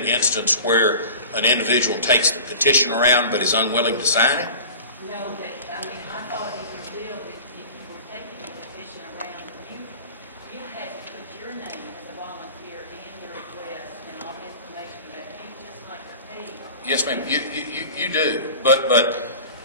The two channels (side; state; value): both; inverted; correlation -0.37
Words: instance where an individual takes the petition around but is unwilling to sign it? No, I thought in your bill that if you were taking the petition around, you had to put your name as a volunteer and your address and all the information about you, just like a page. Yes, ma'am. You do. But